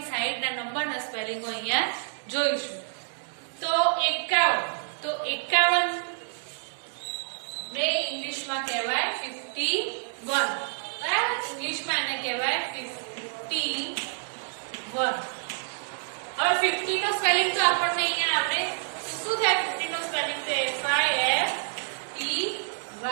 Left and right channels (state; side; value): silent; left; digital silence